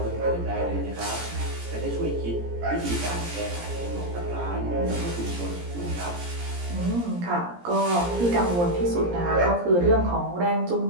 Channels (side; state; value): left; late; 17 ms